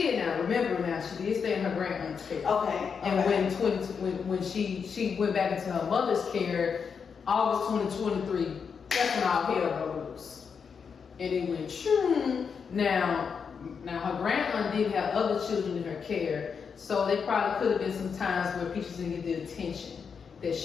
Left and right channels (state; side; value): quieter; right; 6.2 dB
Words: now. Remember now, she did stay in her grandmother's care. Okay. And when she went back into her mother's care, August 2023, that's when all hell broke loose. And it went shoo. Now her grandaunt did have other children in her care, so there probably could have been some times where Peaches didn't get the attention that